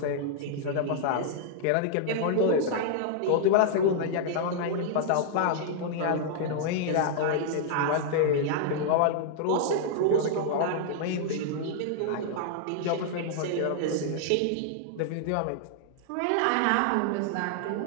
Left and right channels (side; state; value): both; different; correlation -0.01